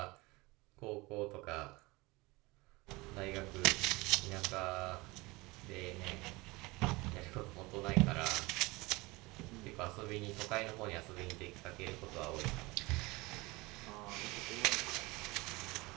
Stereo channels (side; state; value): left; quieter; 23.2 dB